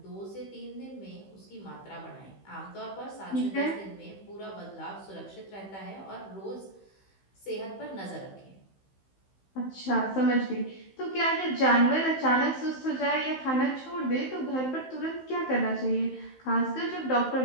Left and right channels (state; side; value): late; right; 15 ms